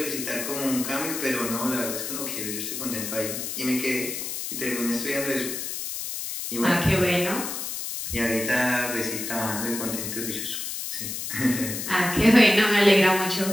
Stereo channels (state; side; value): noise; left; hiss, 5 dB below the sound